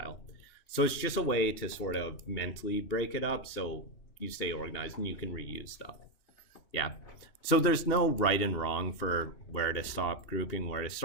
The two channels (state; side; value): late; right; 2.8 ms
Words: So it's just a way to sort of mentally break it up so you stay organized and you can reuse stuff. Yeah. So there's no right and wrong for where to stop grouping, where to